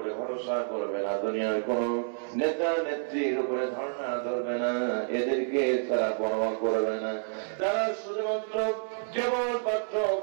ভরসা করবে না, দুনিয়ার কোন নেতা নেত্রীর উপরে ধারণা ধরবে না, এদেরকে তারা পরোয়া করবে না, তারা শুধুমাত্র কেবলমাত্র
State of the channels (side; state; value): left; silent; 58 dB below the other